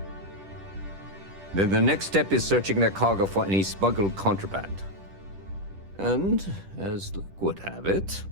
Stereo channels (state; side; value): late; left; 10 ms